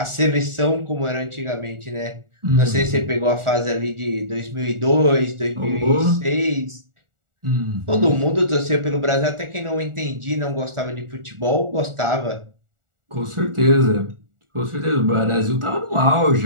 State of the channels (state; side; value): late; left; 1.4 ms